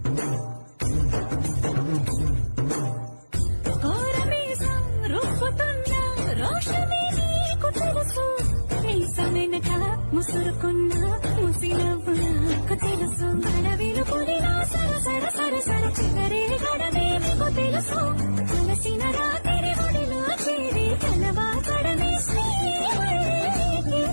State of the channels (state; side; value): inverted; both; correlation -1.00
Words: కోరమీసం రూపుతున్న రోషమే నీకు తెలుసు, మీసమెనక ముసురుకున్న ముసినవ్వు నాకు తెలుసు. అడవిలు పులినా సర సర సర సర చివరి గడమే మీకు తెలుసు.